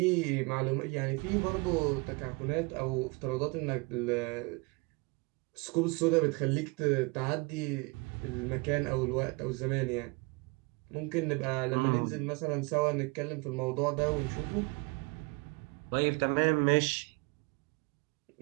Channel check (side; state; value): left; quieter; 28.2 dB